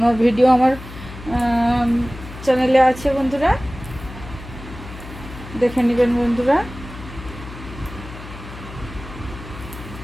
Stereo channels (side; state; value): left; noise; hum, 14 dB below the sound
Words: ভিডিও আমার চ্যানেলে আছে বন্ধুরা, দেখে নেবেন বন্ধুরা।